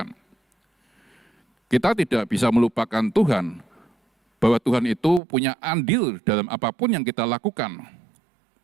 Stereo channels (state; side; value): drops out; left; at 5.2 s